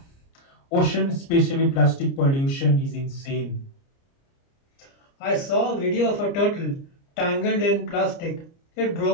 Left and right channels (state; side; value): late; right; 29 ms